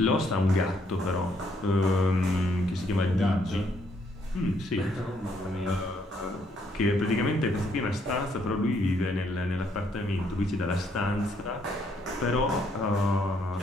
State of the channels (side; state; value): both; normal; correlation 0.70